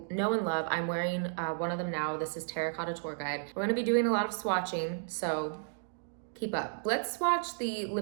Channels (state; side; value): silent; left; digital silence